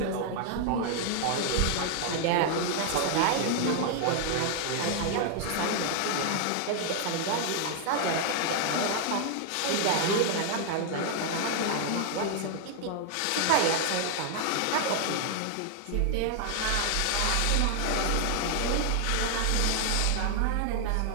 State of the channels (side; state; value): both; different; correlation 0.00